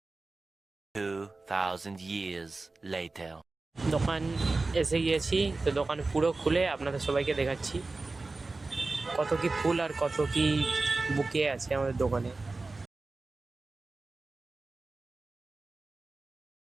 2,000 years later. দোকান এসে গিয়েছি, তো দোকান পুরো খুলে আপনাদের সবাইকে দেখাচ্ছি কত কি ফুল আর কত কি বুকে আছে আমাদের দোকানে।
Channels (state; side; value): quieter; left; 3.5 dB